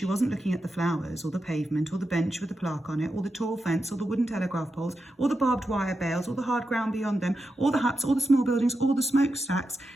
wasn't looking at the flowers or the pavement or the bench with the plaque on it or the tall fence or the wooden telegraph poles or the barbed wire bales or the hard ground beyond them or the huts or the small buildings or the smokestacks.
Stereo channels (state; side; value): normal; both; correlation 0.88